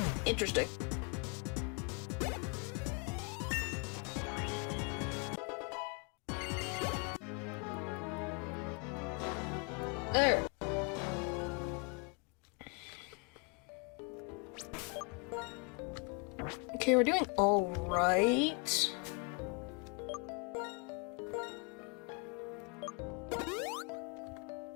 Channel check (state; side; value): quieter; right; 32.9 dB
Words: Interesting. There. Okay, we're doing all right.